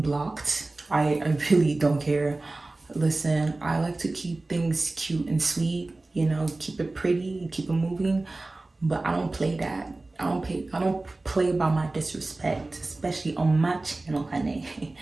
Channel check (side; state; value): left; quieter; 3.1 dB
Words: blocked. I really don't care. Listen, I like to keep things cute and sweet, you know, keep it pretty, keep it moving, but I don't play that. I don't play by my disrespect, especially on my channel, honey.